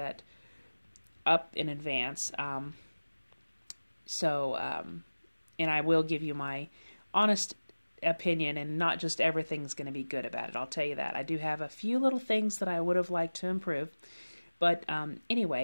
up in advance. And I will give you my honest opinion, and not just everything's going to be good about it. I'll tell you that. I do have a few little things that I would have liked to improve. But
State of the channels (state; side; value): inverted; both; correlation -1.00